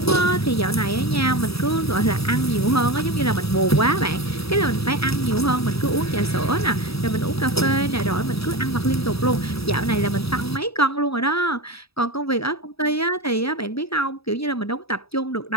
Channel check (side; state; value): right; late; 0.77 ms